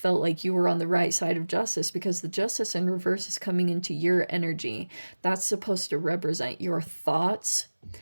like you were on the right side of justice because the justice in reverse is coming into your energy. That's supposed to represent your thoughts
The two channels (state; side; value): inverted; both; correlation -1.00